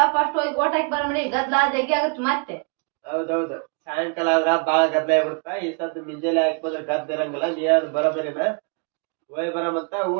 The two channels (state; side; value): quieter; left; 37.3 dB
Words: ಫಸ್ಟ್ ಹೋಗಿ ಓಟ್ ಹಾಕಿ ಬರಮಡಿ. ಗದ್ಲಾ ಜಗ್ಗಿ ಆಗತ್ ಮತ್ತೆ. ಹೌದೌದು, ಸಾಯಂಕಾಲ ಆದ್ರ ಬಾಳ ಗದ್ದ ಆಗ್ಬಿಡ್ತ. ಈ ಸದ್ ಮುಂಜಾನೆ ಹಾಕಿ ಬಂದ್ರೆ ಗದ್ದ ಇರಂಗಿಲ್ಲ. ನೀ ಯಾವ್ದು ಬರೋಬರಿನ ಹೋಯ್ ಬರಮಂತ.